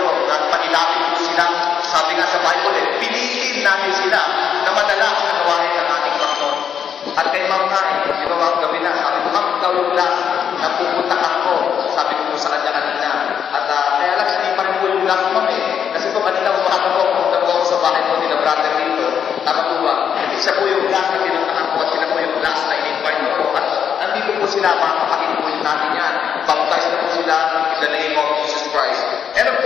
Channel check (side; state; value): right; quieter; 8.0 dB